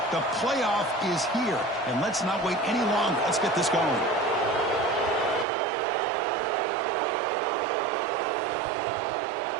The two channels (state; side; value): drops out; left; at 5.5 s